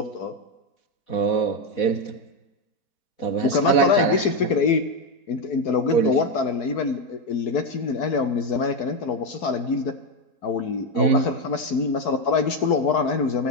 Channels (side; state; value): right; late; 4.6 ms